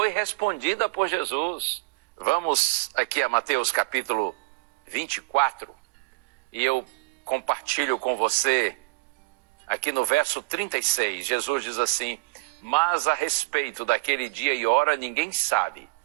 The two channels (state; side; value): quieter; left; 27.3 dB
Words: respondida por Jesus. Vamos aqui a Mateus capítulo 24, e eu compartilho com você aqui no verso 36. Jesus diz assim: mas a respeito daquele dia e hora ninguém sabe,